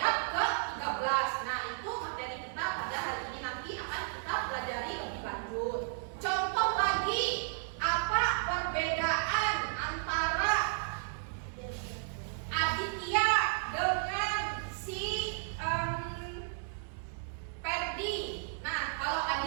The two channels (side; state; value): left; silent; 55 dB below the other